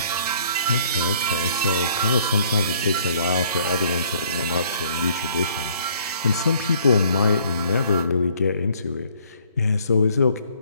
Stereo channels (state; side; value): inverted; both; correlation -0.61